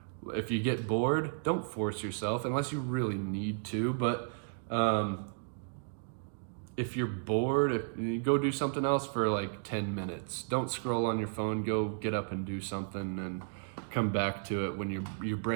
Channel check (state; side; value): silent; left; digital silence